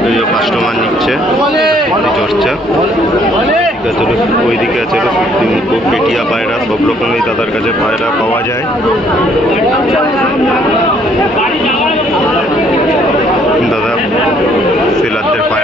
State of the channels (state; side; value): normal; both; correlation 0.64